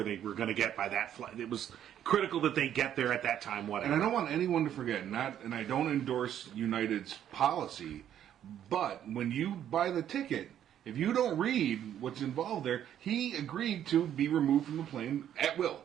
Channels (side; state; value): left; quieter; 10.4 dB